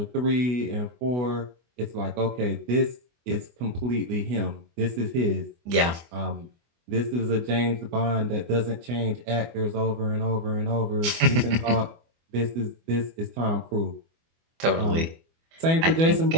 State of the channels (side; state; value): left; late; 24 ms